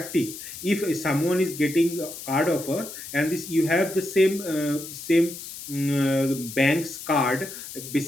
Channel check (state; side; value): noise; left; hiss, 11 dB below the sound